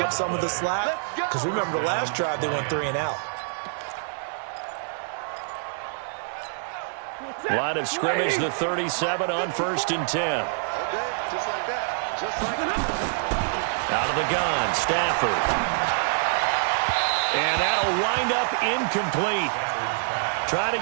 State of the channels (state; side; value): silent; left; digital silence